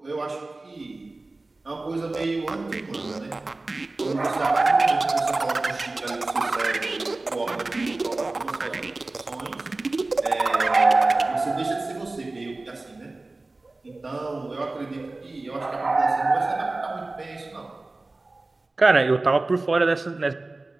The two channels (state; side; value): quieter; left; 3.2 dB